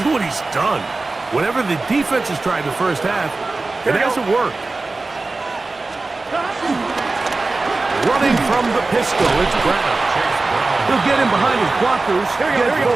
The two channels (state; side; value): quieter; left; 3.4 dB